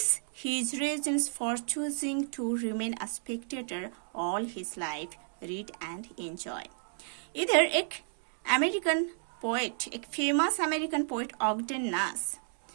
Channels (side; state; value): left; silent; digital silence